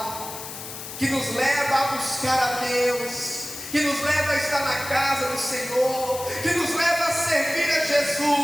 que nos leva a buscar a Deus, que nos leva a estar na casa do Senhor, que nos leva a servir a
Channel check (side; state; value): left; noise; hiss, 10 dB below the sound